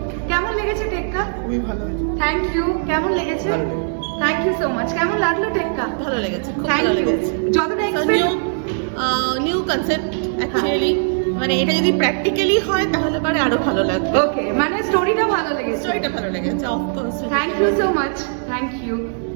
কেমন লেগেছে টেক্কা? খুবই ভালো হয়েছে। Thank you. কেমন লেগেছে? Thank you so much. কেমন লাগলো টেক্কা? ভালো লেগেছে, খুব থ্যাংক ভালো ইউ। লেগেছে। যতটা এক্সপেক্ট নিউ কনসেপ্ট অ্যাকচুয়ালি, মানে এটা যদি প্র্যাকটিক্যালি হয় তাহলে পরে আরো ভালো লাগবে। ওকে, মানে স্টোরিটা ভালো লেগেছে। স্টোরিটা ভালো লেগেছে, of course. Thank you so much. Thank you.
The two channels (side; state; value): left; silent; digital silence